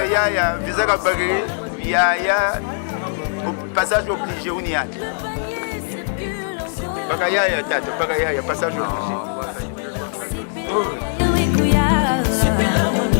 Visaka Bagri, Yaya, passage obligé, Ouniyaya. Bagayaya, Tato, Bagayaya, passage obligé.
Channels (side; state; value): right; silent; 64 dB below the other